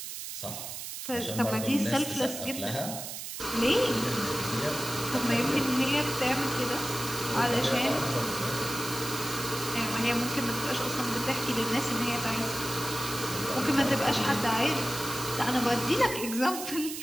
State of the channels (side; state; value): right; noise; hiss, 7 dB below the sound